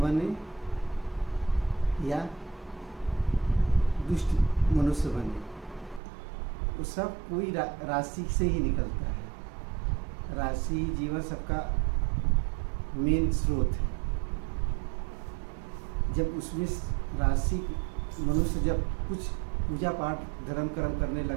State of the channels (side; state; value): left; drops out; at 6.0 s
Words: या दुष्ट मनुष्य बने, वो सब कोई राशि से ही निकलता है। राशि जीवन सबका मेन स्रोत है। जब उसमें राशि मनुष्य जब कुछ पूजा पाठ धर्म कर्म करने